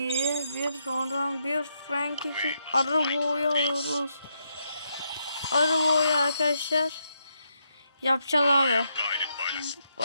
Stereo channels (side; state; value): both; inverted; correlation -0.80